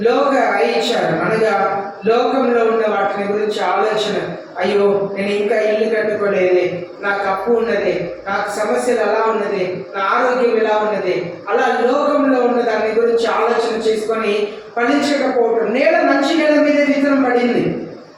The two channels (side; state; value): both; identical; correlation 1.00